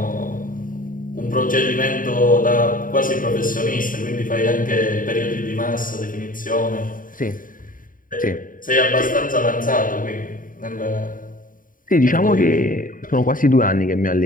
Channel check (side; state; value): right; late; 0.39 ms